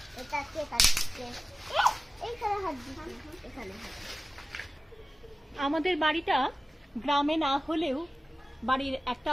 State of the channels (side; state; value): both; normal; correlation 0.97